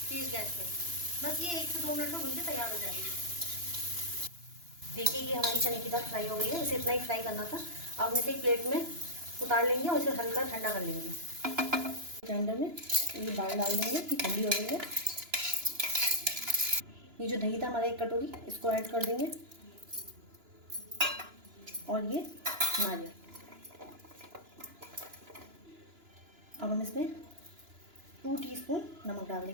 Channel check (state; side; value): late; left; 2.9 ms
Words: तेज गैस पे। बस ये 1 से 2 मिनट में भून के तैयार हो जाएगी। देखिए ये हमारी चने की दाल फ्राई हो गई है, इसे इतना ही फ्राई करना था। अब हम इसे एक प्लेट में उतार लेंगे और इसे हल्का ठंडा कर लेंगे। ग्राइंडर में ये दाल डाल देंगे, ये ठंडी हो गई है। ये जो दही था हमारा 1 कटोरी, इसको ऐड कर देंगे, और ये नारियल। अब हम इसमें 2 टीस्पून नमक डाल